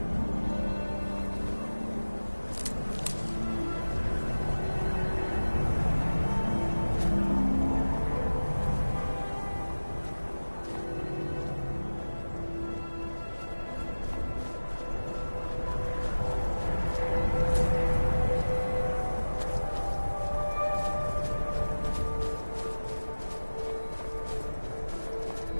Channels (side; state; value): both; inverted; correlation -1.00